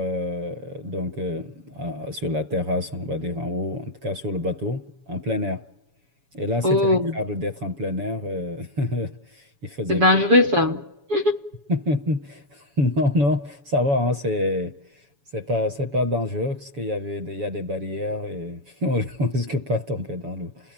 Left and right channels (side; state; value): left; late; 7.1 ms